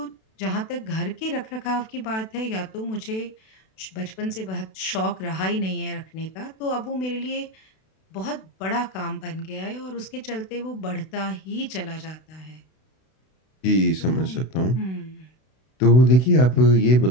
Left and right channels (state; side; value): late; right; 32 ms